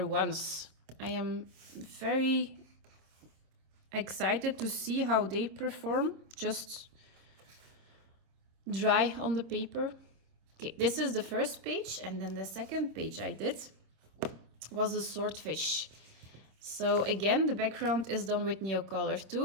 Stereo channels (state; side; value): late; left; 26 ms